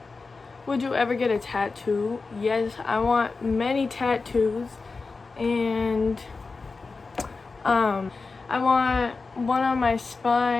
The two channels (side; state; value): right; quieter; 4.1 dB